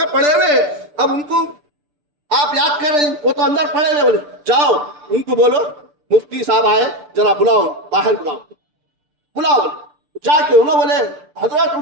پڑے ہوئے، اب ان کو آپ یاد کر رہے ہیں، وہ تو اندر پڑے ہوئے. بولے جاؤ ان کو بولو مفتی صاحب آئے، ذرا بلاؤ، باہر بلاؤ. جا کے انہوں بولے حضرت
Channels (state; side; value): late; left; 6.8 ms